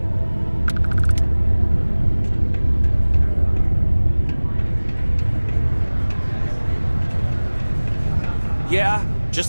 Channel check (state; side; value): inverted; both; correlation -1.00